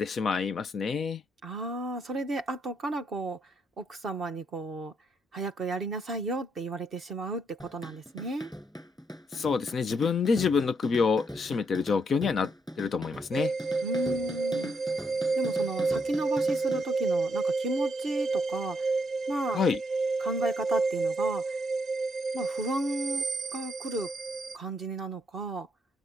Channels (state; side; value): normal; both; correlation 0.75